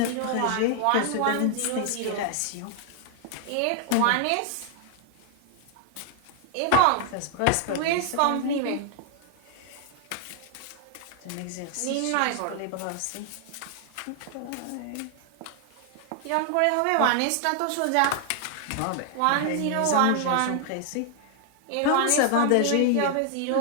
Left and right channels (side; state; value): both; different; correlation 0.00